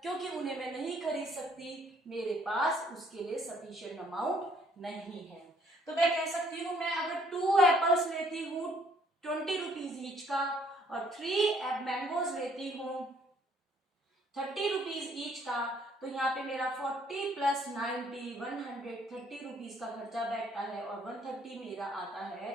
क्योंकि उन्हें मैं नहीं खरीद सकती, मेरे पास उसके लिए सफिशिएंट अमाउंट नहीं है। तो मैं कह सकती हूँ मैं अगर 2 एप्पल्स लेती हूँ 20 रुपीज ईच का और 3 मैंगोज लेती हूँ 30 रुपीज ईच का, तो यहाँ पे मेरा 40 प्लस 90 130 रुपीज का खर्चा बैठता है और 130 मेरा आता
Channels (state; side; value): normal; both; correlation 0.64